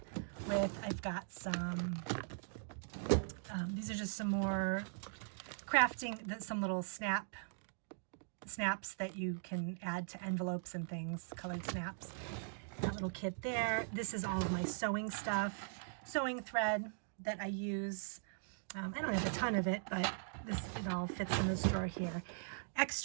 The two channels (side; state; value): left; silent; digital silence